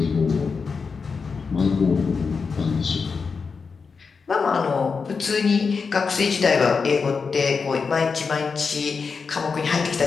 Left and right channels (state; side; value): quieter; right; 5.1 dB